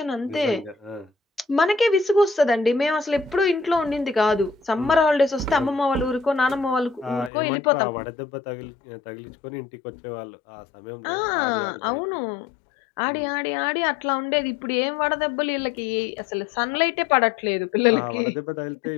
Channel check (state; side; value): drops out; right; at 7.3 s